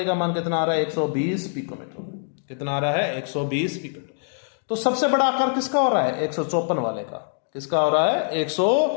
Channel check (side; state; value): right; silent; digital silence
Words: का मान कितना आ रहा है, 120 पिकोमीटर। कितना आ रहा है, 120 पिकोमीटर। तो सबसे बड़ा आकार किसका हो रहा है, 154 वाले का। किसका हो रहा है,